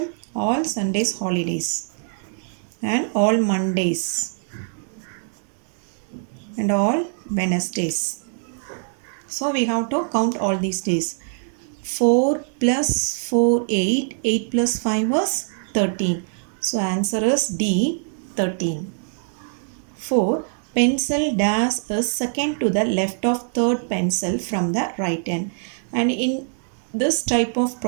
All Sundays holidays and all Mondays and all Wednesdays. So we have to count all these days. 4 plus 4, 8. 8 plus 5 was 13. So answer is D, 13. 4. Pencil dash is second to the left of third pencil from the right hand. And in this type of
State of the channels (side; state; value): left; silent; digital silence